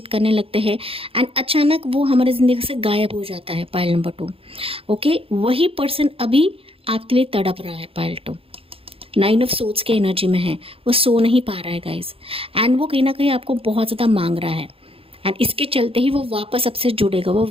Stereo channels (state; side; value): late; left; 0.27 ms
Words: करने लगते हैं, एंड अचानक वो हमारे ज़िंदगी से गायब हो जाता है पाइल नंबर 2। ओके, वही पर्सन अभी आपके लिए तड़प रहा है पाइल 2। 9 ऑफ सोर्ड्स के एनर्जी में है, वो सो नहीं पा रहा है गाइस, एंड वो कहीं ना कहीं आपको बहुत ज़्यादा मांग रहा है, एंड इसके चलते ही वो वापस आपसे जुड़ेगा, वो